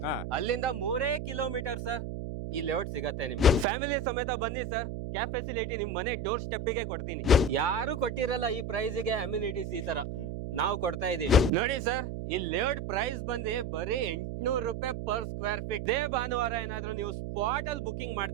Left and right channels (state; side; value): noise; right; hum, 5 dB below the sound